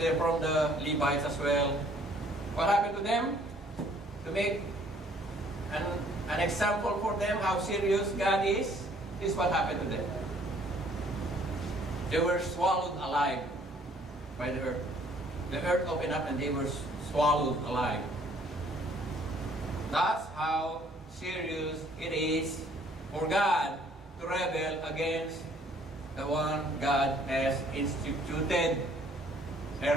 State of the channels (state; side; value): normal; both; correlation 0.60